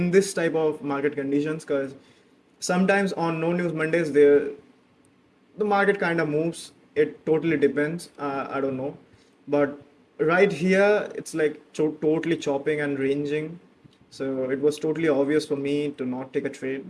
this type of market conditions, because sometimes on no news Mondays the market kind of moves. It totally depends. I don't know, but right here it's like totally chopping and ranging. So it was totally obvious for me to not take a trade,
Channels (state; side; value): identical; both; correlation 1.00